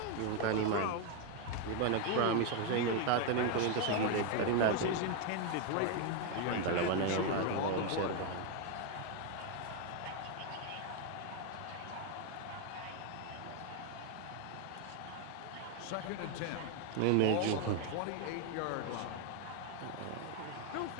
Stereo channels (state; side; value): different; both; correlation 0.01